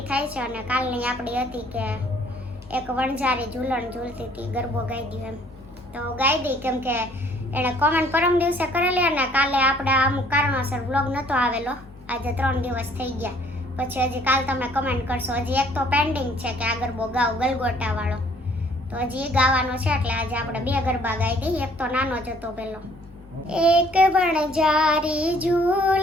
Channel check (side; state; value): both; normal; correlation 0.60